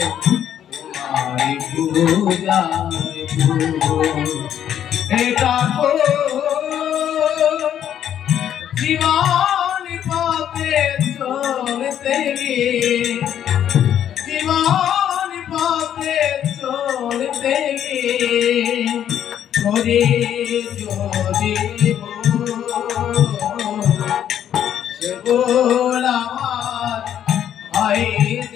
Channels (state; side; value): quieter; right; 10.0 dB